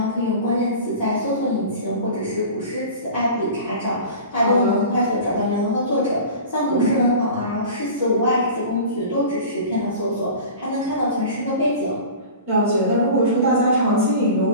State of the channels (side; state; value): both; inverted; correlation -0.36